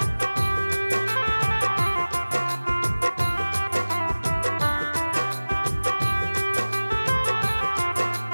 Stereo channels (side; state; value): both; inverted; correlation -1.00